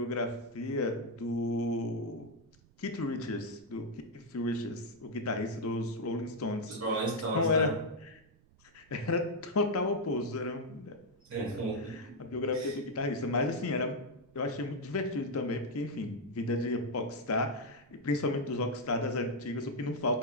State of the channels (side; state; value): right; noise; rumble, 29 dB below the sound